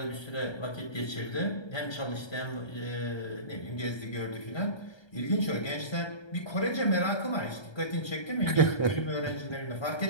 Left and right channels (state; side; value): late; right; 1.3 ms